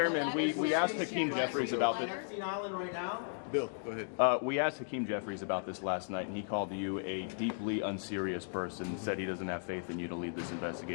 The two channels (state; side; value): silent; right; digital silence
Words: we asked Hakeem Jeffries about this. Epstein Island right now? Bill, go ahead. We asked Hakeem Jeffries about this last night, and he called you a deeply unserious person, said he doesn't have faith in you to lead this